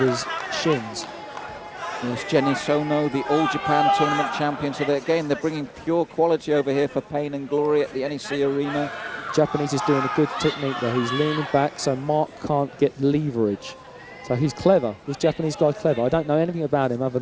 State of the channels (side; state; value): both; identical; correlation 1.00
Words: shins. Yes, Jenny Sono, the All Japan Tournament champion. So they're bringing pure quality over here for pain and glory at the NEC Arena. Japanese is doing a good technique there. He's leaning back so Mark can't get leverage. So he's clever. This Japanese guy's clever. I don't know anything about him other